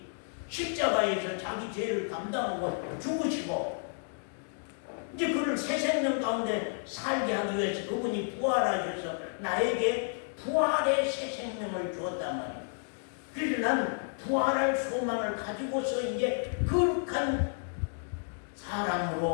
십자가에서 자기 죄를 감당하고 죽으시고 이제 그를 새 생명 가운데 살게 하기 위해서 그분이 부활하셔서 나에게 부활의 새 생명을 주었단 말이에요. 그래서 난 부활할 소망을 가지고서 이제 거룩한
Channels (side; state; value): right; silent; digital silence